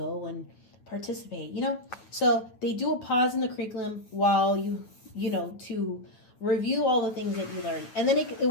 and participate, you know? So they do a pause in the curriculum while you know, to review all the things that you learned. And then it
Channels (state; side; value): late; right; 9.2 ms